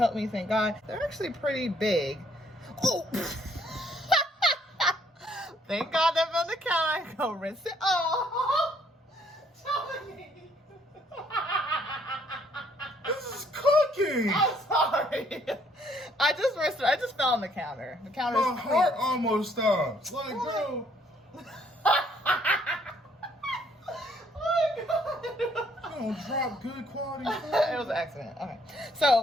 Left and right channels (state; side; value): normal; both; correlation 0.66